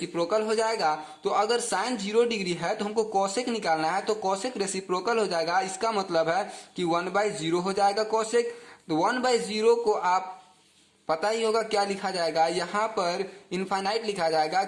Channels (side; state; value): both; identical; correlation 1.00